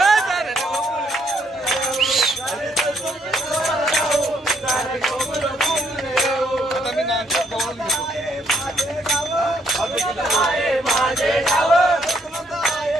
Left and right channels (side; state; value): both; normal; correlation 0.72